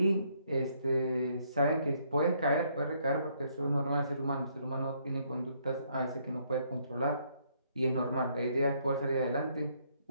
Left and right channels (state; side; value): inverted; both; correlation -0.70